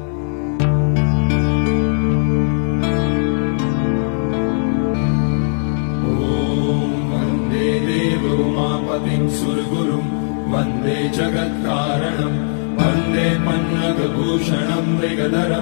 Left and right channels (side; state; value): right; silent; digital silence